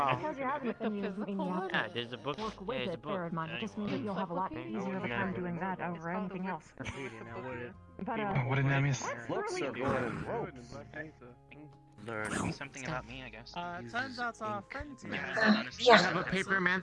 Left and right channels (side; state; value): both; identical; correlation 1.00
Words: Because you have it, The then you physical mean you have one? to Yeah, there's a book. work with Yeah, there's it. a book. Bear in mind, it just means that you'll have a lot easier of a time doing that over anything else. But What did I miss? that's really cool. learn something about me, I guess. Turns out our friends here. Yeah. I have a